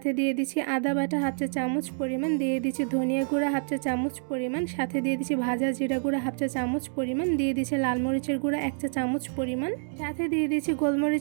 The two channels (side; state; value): left; silent; 60 dB below the other